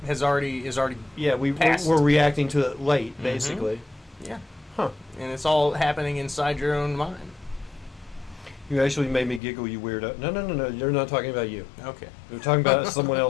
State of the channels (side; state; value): right; drops out; at 9.4 s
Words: already Yeah, passed. we're reacting to it late, basically. Yeah. Huh. And it's all happening inside your own mind. You actually made me giggle, you weirdo. No. You're not talking about you. Okay. We're talking about someone